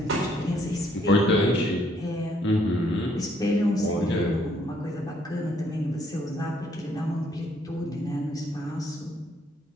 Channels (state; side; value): normal; both; correlation 0.67